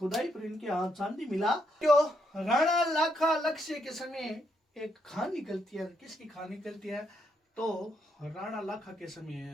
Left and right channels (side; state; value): both; normal; correlation 0.77